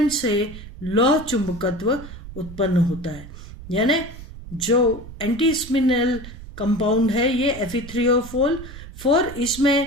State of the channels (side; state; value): right; noise; rumble, 14 dB below the sound